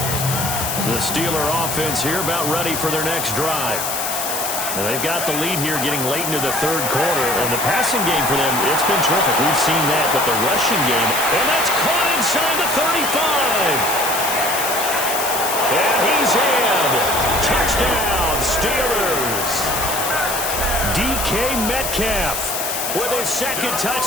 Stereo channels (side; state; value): left; noise; hiss, 3 dB below the sound